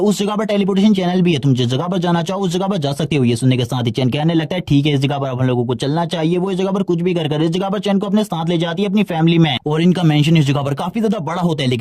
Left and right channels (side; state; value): both; identical; correlation 1.00